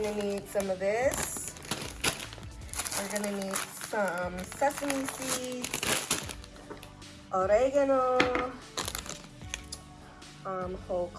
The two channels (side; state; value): both; identical; correlation 1.00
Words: need some of this. We're gonna need some sesame seeds, oregano, whole